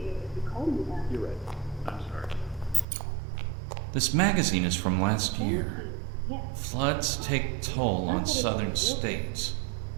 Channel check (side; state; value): left; drops out; at 2.9 s